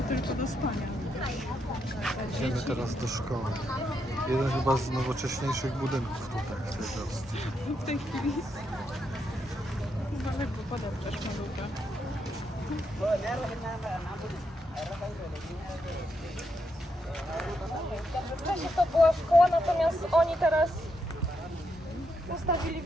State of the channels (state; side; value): normal; both; correlation 0.80